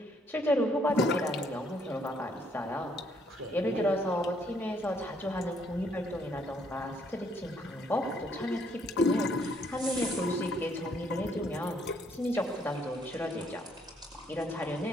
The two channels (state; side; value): normal; both; correlation 0.68